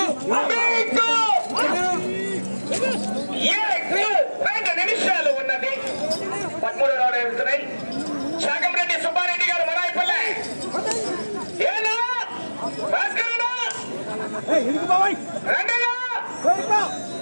2 నిమిషాలు ఉన్నది. 13 రౌండ్ వెళ్తున్నాయి. శాకంరెడ్డి సుబ్బారెడ్డి గారు మొరాయిపల్లె ఏనా భాస్కరనా రంగయ్య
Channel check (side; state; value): both; inverted; correlation -1.00